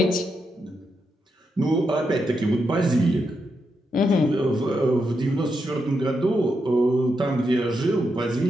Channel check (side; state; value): both; normal; correlation 0.83